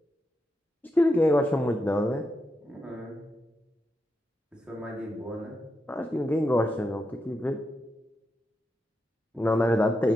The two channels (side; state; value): both; normal; correlation 0.85